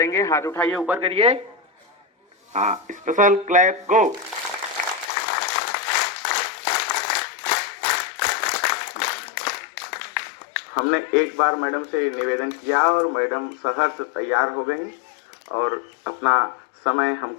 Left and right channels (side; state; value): right; drops out; at 5.1 s